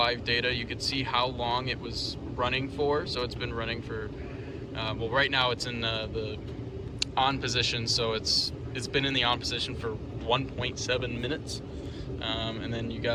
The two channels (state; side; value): identical; both; correlation 1.00